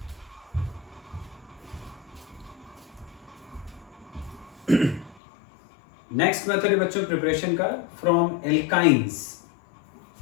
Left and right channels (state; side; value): drops out; right; at 5.2 s